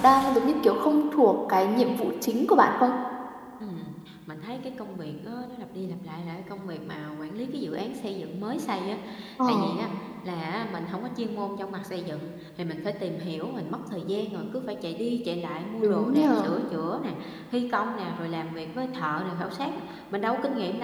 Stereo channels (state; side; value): identical; both; correlation 1.00